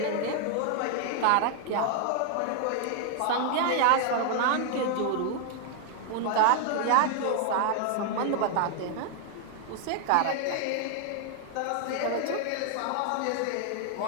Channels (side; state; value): both; different; correlation 0.00